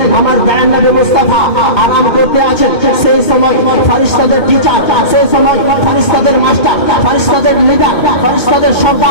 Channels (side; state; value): right; late; 2.5 ms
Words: আমার দয়াল নবী মুস্তাফা আরাম করতে আছেন। সেই সময় ফেরেশতাদের টিচার, সেই সময় ফেরেশতাদের মাস্টার, ফেরেশতাদের লিডার, ফেরেশতাদের